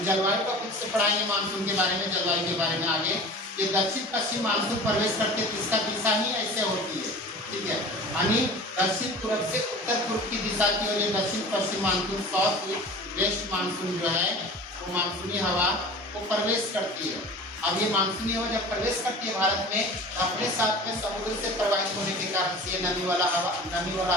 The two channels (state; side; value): normal; both; correlation 0.39